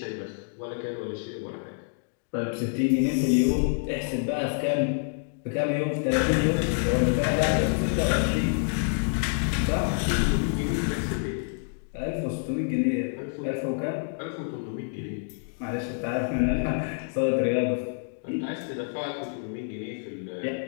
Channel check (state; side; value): silent; right; digital silence